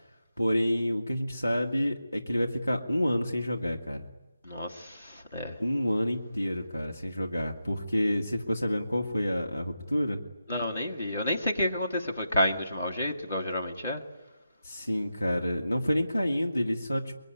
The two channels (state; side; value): inverted; both; correlation -0.89